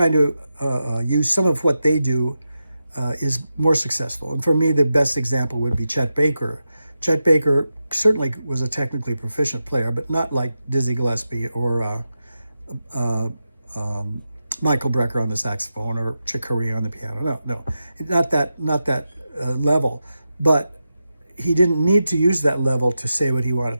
to use some of what they do is more successful. And for me, the best example would be Chet Baker. Chet Baker certainly was a technically proficient player, but not like Dizzy Gillespie or Michael Brecker on the saxophone or Chick Corea on the piano. No, not that level. But he didn't need to use that level to say what he wanted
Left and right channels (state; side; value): inverted; both; correlation -0.90